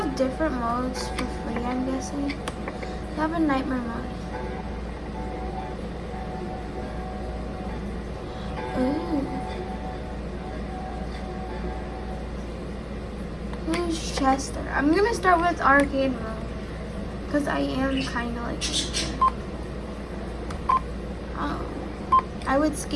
different modes for free, I'm guessing. They have a nightmare mode. Ooh. Who's Chester? I'm gonna start with arcade mode. Because I am kind of like Chester. I would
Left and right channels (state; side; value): identical; both; correlation 1.00